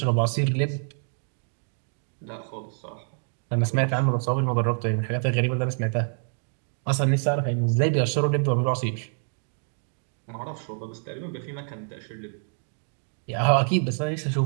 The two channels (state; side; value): silent; left; 60 dB below the other